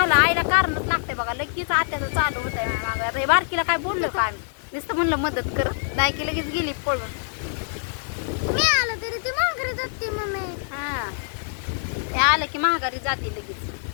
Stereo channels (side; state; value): right; silent; digital silence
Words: आईला कारणच लागते बघा. लगेच आत्याचं चालू होत आहे मागं. रे बारकीला काय बोललो का आम्ही? नुसतं म्हणलं मदत कर नाही की लगेच गेली पळून. मी आलं तरी ती माघारी जाते मम्मी. हा ते आलं की महागारी जाते लगेच.